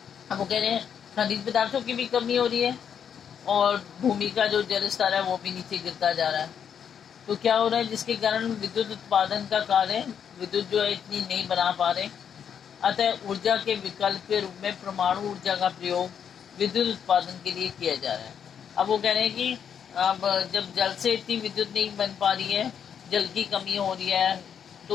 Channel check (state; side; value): quieter; right; 8.0 dB